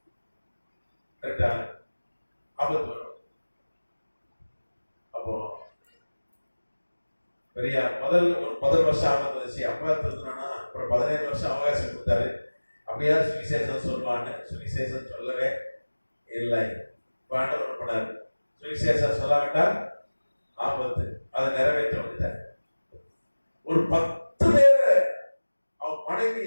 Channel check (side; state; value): both; inverted; correlation -1.00